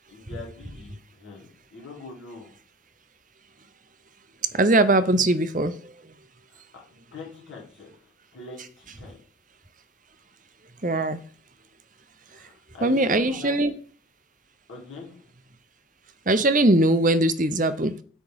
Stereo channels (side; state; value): both; normal; correlation 0.40